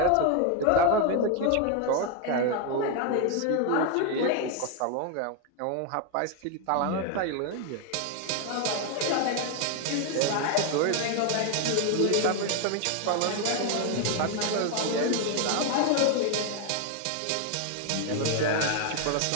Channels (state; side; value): different; both; correlation 0.01